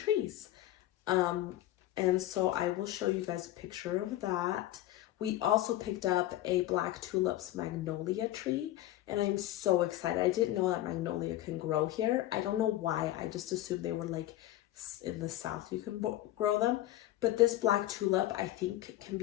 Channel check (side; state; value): right; quieter; 14.6 dB